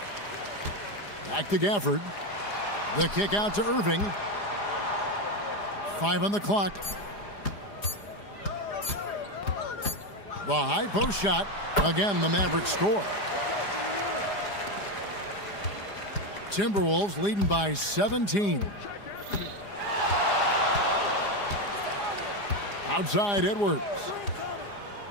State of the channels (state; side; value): late; right; 4.9 ms